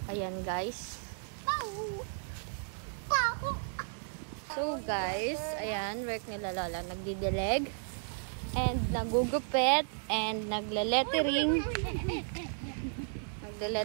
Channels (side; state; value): left; silent; digital silence